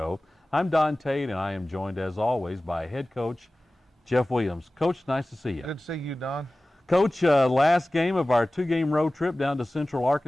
I'm Don Tate, and I am joined, as always, by head coach Jeff Williams. Coach, nice to see you. Good to see you, Don. Coach, last game of our two-game road trip down to Central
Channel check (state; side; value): normal; both; correlation 0.97